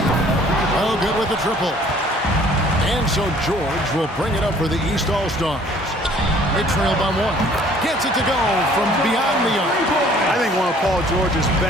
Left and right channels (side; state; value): both; normal; correlation 0.56